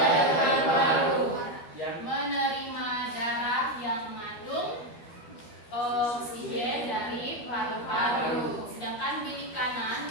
Menerima darah yang mengandung oksigen dari paru-paru. Sedangkan bilik kanan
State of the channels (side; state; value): right; late; 13 ms